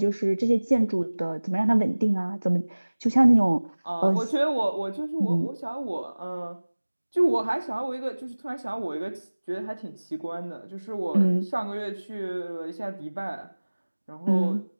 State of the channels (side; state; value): both; inverted; correlation -1.00